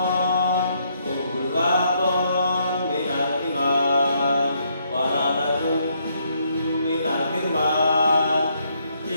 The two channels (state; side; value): inverted; both; correlation -0.73